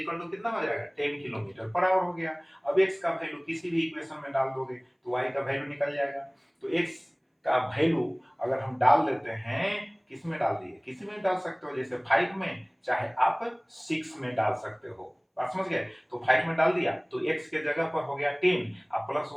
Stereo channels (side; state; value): both; identical; correlation 1.00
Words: टू कितना हो जाएगा 10 किलोमीटर पर आवर हो गया। अब x का वैल्यू किसी भी इक्वेशन में डाल दोगे तो y का वैल्यू निकल जाएगा। तो x का वैल्यू अगर हम डाल लेते हैं, किस में डाल दिए, किसी में डाल सकते हो, जैसे 5 में, चाहे आप 6 में डाल सकते हो, बात समझ गए। तो 5 में डाल दिया तो x के जगह पर हो गया 10 और plus